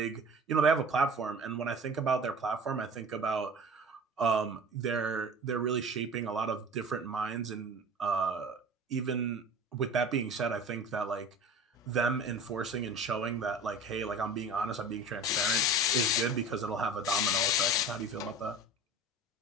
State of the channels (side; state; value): both; normal; correlation 0.39